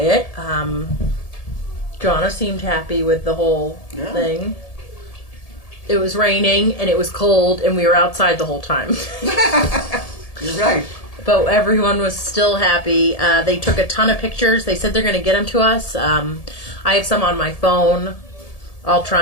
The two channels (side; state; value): right; late; 1.7 ms